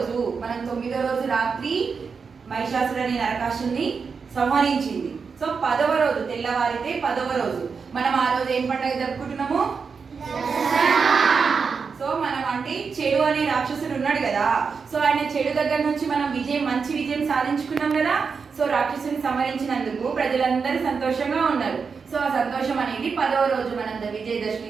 మనం 9వ రోజు రాత్రి మహిషాసురుడు అనే నరకాసుని సంహరించింది. సో 10వ రోజు తెల్లవారితే 10వ రోజు మనం ఆ రోజు ఏం పండుగ జరుపుకుంటున్నాము? సో మనం అంటే చెడు అనే రాక్షసుడు ఉన్నాడు కదా, సో ఆయన చెడు దగ్గర నుంచి మనం మంచి విజయం సాధించుకున్నాం కదా. సో రాక్షసుని సంహరించినందుకు ప్రజలందరూ సంతోషంగా ఉన్నారు. సో ఆ సంతోషం అనేది 10వ రోజు మనం విజయదశమి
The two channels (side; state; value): left; quieter; 5.5 dB